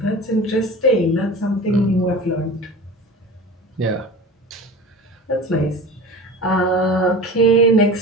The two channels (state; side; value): normal; both; correlation 0.35